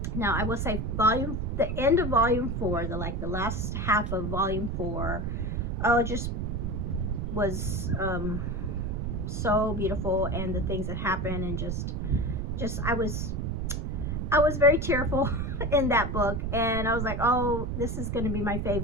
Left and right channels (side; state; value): right; noise; rumble, 2 dB below the sound